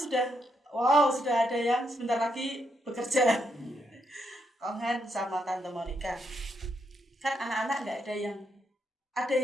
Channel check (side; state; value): both; normal; correlation 0.79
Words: sudah ada yang sebentar lagi bekerja. Iya. Kong Han sama Tante Monica. Kan anak-anak nggak ada